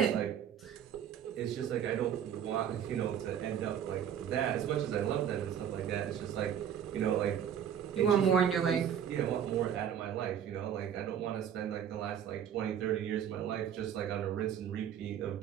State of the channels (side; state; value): left; quieter; 9.1 dB